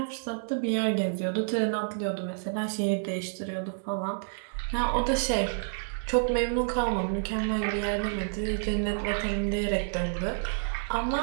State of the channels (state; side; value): silent; left; digital silence